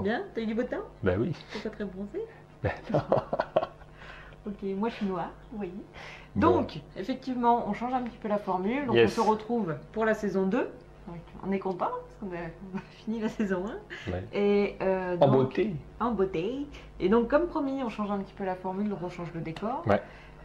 Bien? T'as eu du beau temps? Ben oui. T'es pas très bronzé? Ben non. Ok, moi je suis noire, oui. Bon. Donc, effectivement, on change un petit peu la formule. Donc, Yes. on se retrouve pour la saison 2. Donc, on est content parce qu'on a fini la saison 1. Ouais. Et, En donc, beauté. En beauté. Et donc, comme promis, on change un petit peu la formule, donc on change le décor. Ouais.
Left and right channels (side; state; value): both; identical; correlation 1.00